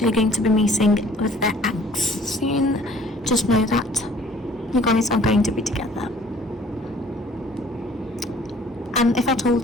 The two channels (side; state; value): both; normal; correlation 0.55